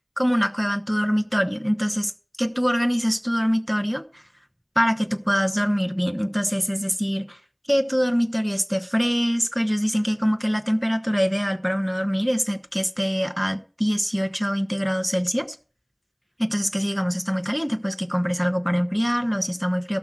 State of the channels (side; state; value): both; identical; correlation 1.00